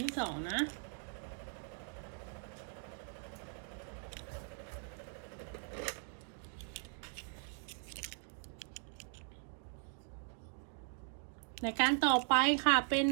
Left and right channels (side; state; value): left; silent; 51 dB below the other